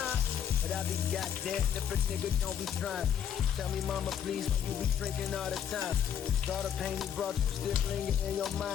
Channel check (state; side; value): quieter; right; 8.8 dB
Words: But I be goddamn if a nigga don't be trying. Tell me, mama, please, why you be drinking all the time? All the pain you brought you still lingering in your